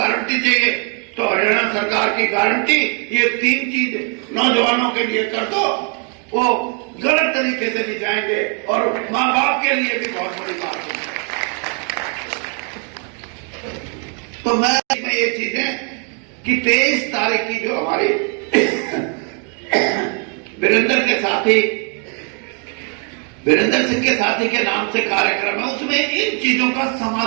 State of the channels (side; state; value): left; quieter; 39.1 dB